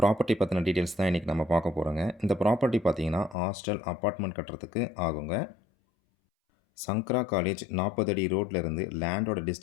பற்றின டீட்டெயில்ஸ் தான் இன்றைக்கி நம்ம பார்க்க போகிறோங்க. இந்த ப்ராப்பர்ட்டி பார்த்திங்கன்னா ஹாஸ்டல் அப்பார்ட்மெண்ட் கட்டுறதுக்கு ஆகுங்க. சங்கரா காலேஜ் 40 அடி ரோட்லேருந்து லேண்டோட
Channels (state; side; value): drops out; right; at 3.4 s